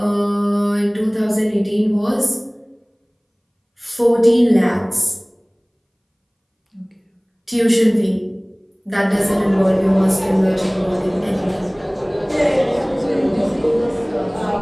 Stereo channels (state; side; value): identical; both; correlation 1.00